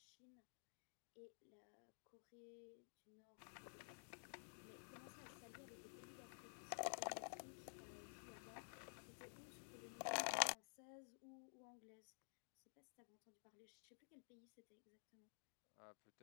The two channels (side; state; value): right; silent; digital silence